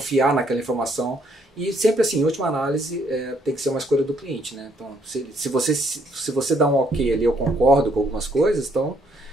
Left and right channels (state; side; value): normal; both; correlation 0.69